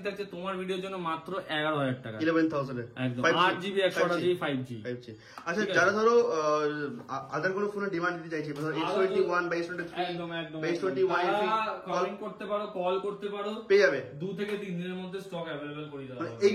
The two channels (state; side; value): identical; both; correlation 1.00